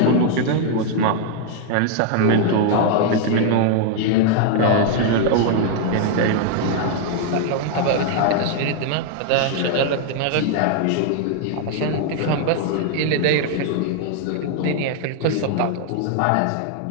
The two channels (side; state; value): both; different; correlation 0.00